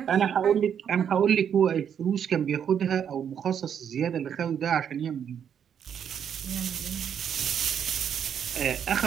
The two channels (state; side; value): quieter; left; 8.3 dB